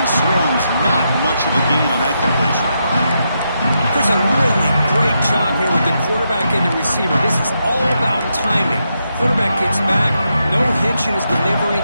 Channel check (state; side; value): inverted; both; correlation -0.83